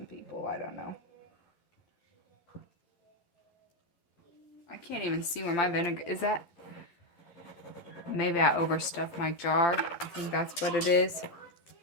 people. I don't know. I can't even see where my vinegar is at. Maybe I overstuffed my jar. I think that's what it is.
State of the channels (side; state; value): right; late; 12 ms